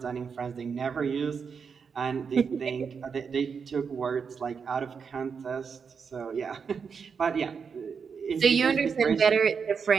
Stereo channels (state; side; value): quieter; left; 6.0 dB